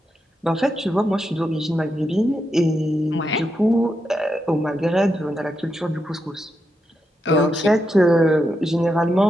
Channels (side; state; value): both; normal; correlation 0.85